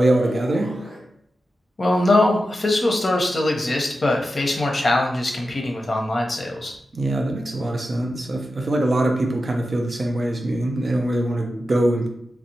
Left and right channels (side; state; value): both; normal; correlation 0.91